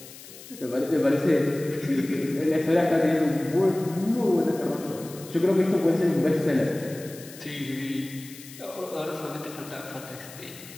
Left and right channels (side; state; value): left; noise; hiss, 17 dB below the sound